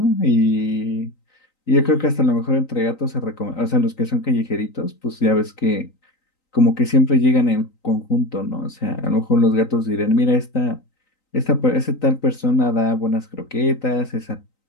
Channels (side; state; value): right; late; 3.9 ms